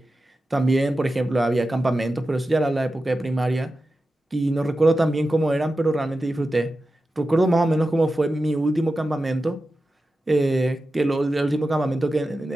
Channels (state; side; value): normal; both; correlation 0.92